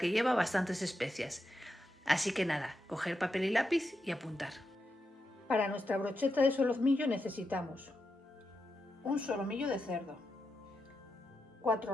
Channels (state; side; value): normal; both; correlation 0.86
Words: lleva bastantes especias. Así que nada, coger papel y lápiz y apuntar. Para nuestra brocheta de solomillo necesitamos un solomillo de cerdo,